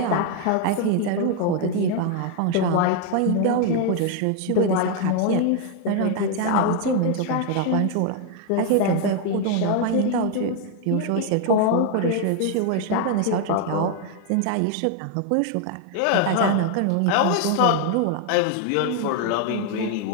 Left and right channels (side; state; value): both; different; correlation 0.00